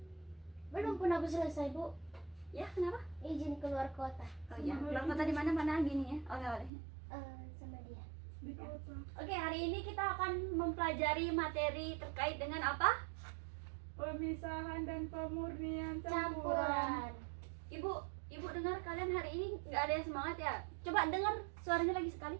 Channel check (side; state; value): left; drops out; at 6.7 s